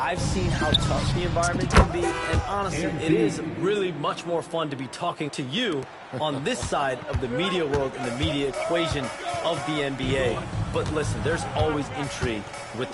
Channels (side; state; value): both; identical; correlation 1.00